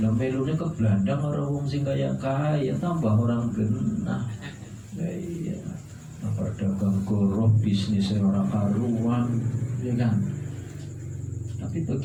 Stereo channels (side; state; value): both; identical; correlation 1.00